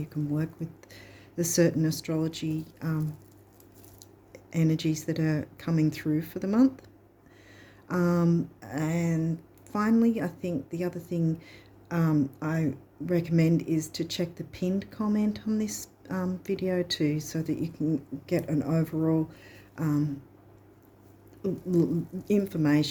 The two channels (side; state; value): both; identical; correlation 1.00